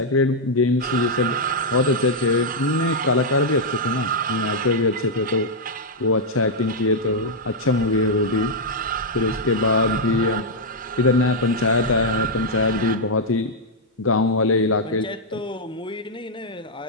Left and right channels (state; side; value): normal; both; correlation -0.04